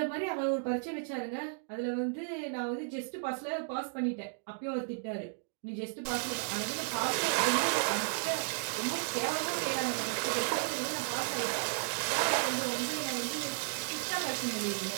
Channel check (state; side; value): silent; left; digital silence